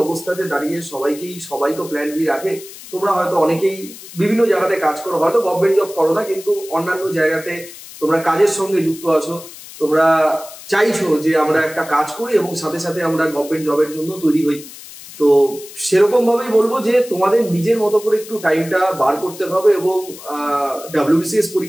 অবস্থাতে দাঁড়িয়ে সবাই তো প্ল্যান বি রাখে। তোমরা হয়তো অনেকেই বিভিন্ন জায়গাতে কাজ করো, হয়তো গভর্নমেন্ট জব করো না, কিন্তু অন্যান্য জায়গাতে তোমরা কাজের সঙ্গে যুক্ত আছো, তোমরা চাইছো যে আমরা একটা কাজ করি এবং সাথে সাথে আমরা গভর্নমেন্ট জবের জন্য তৈরি হই, তো সেরকম ভাবেই বলবো যে তোমাদের নিজের মতো করে একটু টাইমটা বার করতে হবে। এবং WBCS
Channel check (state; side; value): noise; left; hiss, 16 dB below the sound